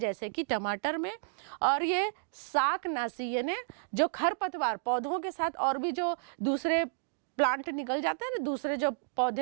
कि टमाटर में। और ये शाकनाशी यानी जो खरपतवार पौधों के साथ और भी जो दूसरे प्लांट निकल जाते हैं ना, दूसरे जो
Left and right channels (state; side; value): silent; left; digital silence